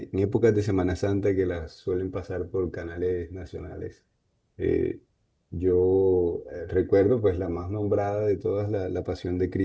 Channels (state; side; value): identical; both; correlation 1.00